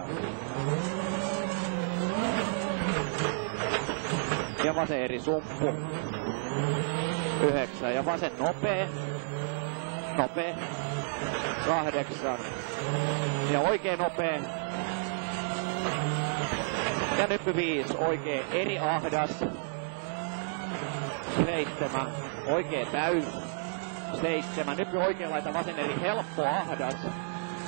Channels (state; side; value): silent; left; digital silence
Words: Ja vasen eri sumppu. 9. Ja vasen nopee. 8. Ja oikein nopee. Ja nyppy 5. Oikein eri ahdas. 7. Oikein täys. 7. Nyppy oikein laita vasen eri helppo ahdas.